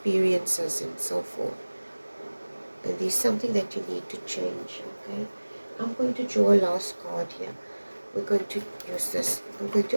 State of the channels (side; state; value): both; inverted; correlation -1.00